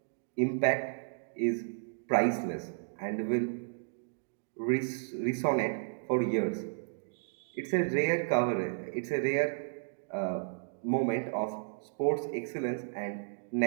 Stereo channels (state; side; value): silent; left; digital silence